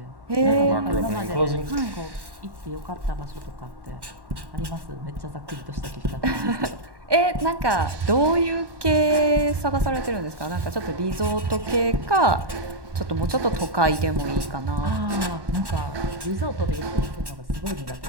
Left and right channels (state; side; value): late; left; 1.1 ms